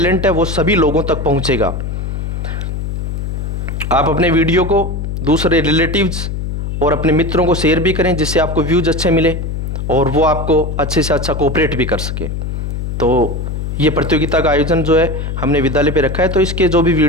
है वो सभी लोगों तक पहुंचेगा। आप अपने वीडियो को दूसरे रिलेटिव्स और अपने मित्रों को शेयर भी करें, जिससे आपको व्यूज अच्छे मिले और वो आपको अच्छे से अच्छा कोऑपरेट भी कर सके। तो ये प्रतियोगिता का आयोजन जो है हमने विद्यालय पे रखा है, तो इसके जो भी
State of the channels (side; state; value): left; noise; hum, 4 dB below the sound